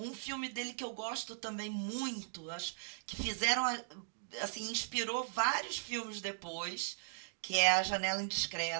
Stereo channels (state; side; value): silent; left; digital silence